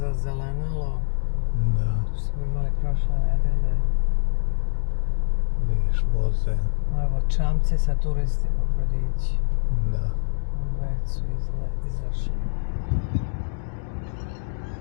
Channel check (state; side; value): silent; right; digital silence